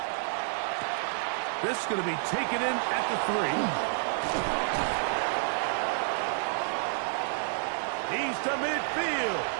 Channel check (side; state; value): left; silent; 58 dB below the other